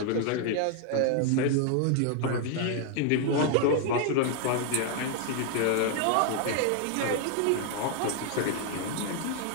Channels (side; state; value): both; different; correlation 0.00